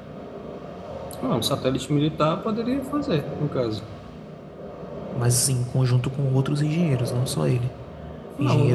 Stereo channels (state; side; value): identical; both; correlation 1.00